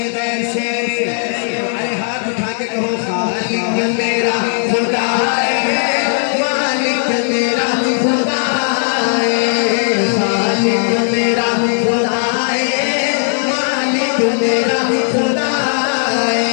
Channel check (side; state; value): right; silent; 65 dB below the other